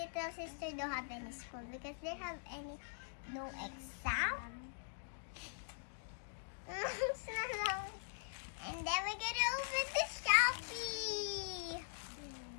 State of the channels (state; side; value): silent; right; digital silence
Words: sister don't have any school because they have no exam. And then we're gonna open the Shopee.